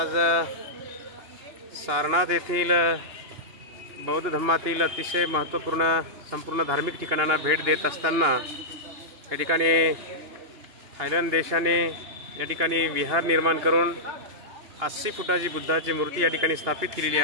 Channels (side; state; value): left; late; 2.9 ms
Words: सारनाथ येथील बौद्ध धर्मातील अतिशय महत्त्वपूर्ण संपूर्ण धार्मिक ठिकाणांना भेट देत असताना या ठिकाणी थायलंड देशाने या ठिकाणी विहार निर्माण करून 80 फुटाची बुद्धाची मूर्ती या ठिकाणी स्थापित केलेली